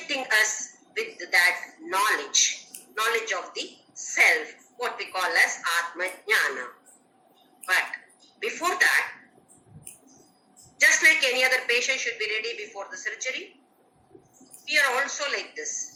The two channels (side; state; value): both; identical; correlation 1.00